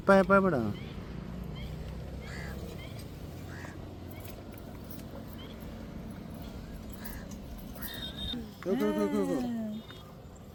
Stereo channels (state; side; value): identical; both; correlation 1.00